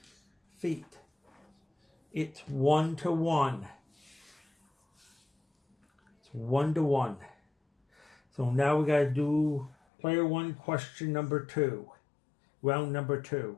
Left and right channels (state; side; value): drops out; right; at 9.8 s